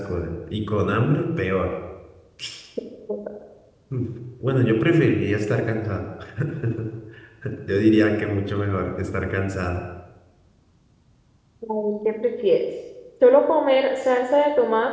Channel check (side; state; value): both; identical; correlation 1.00